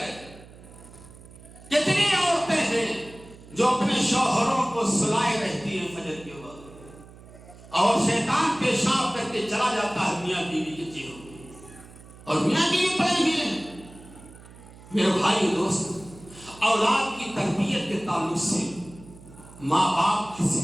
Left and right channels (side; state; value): right; noise; hum, 20 dB below the sound